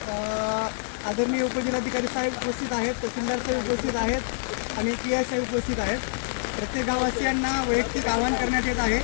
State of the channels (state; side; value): silent; right; digital silence